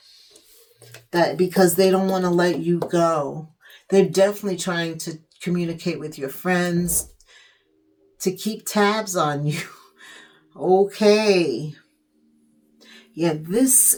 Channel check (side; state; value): both; identical; correlation 1.00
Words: that because they don't want to let you go. They're definitely trying to communicate with your friends to keep tabs on you. Okay. Yeah, this